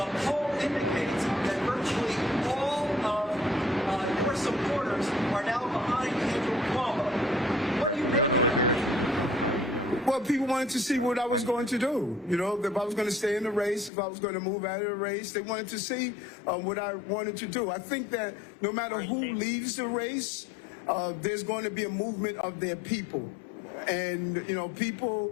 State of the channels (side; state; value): right; drops out; at 13.9 s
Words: poll indicates that virtually all of your supporters are now behind Andrew Cuomo. What do you make of that? Well, people wanted to see what I was going to do. You know, if I was going to stay in the race, if I was going to move out of the race, they wanted to see what I wanted to do. I think that no matter who leaves the race, there's going to be a movement of their people. And,